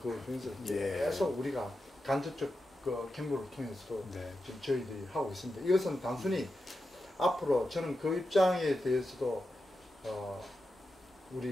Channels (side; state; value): both; normal; correlation 0.89